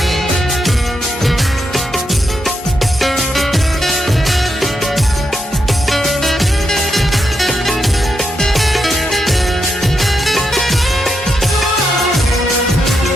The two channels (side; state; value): both; normal; correlation 0.83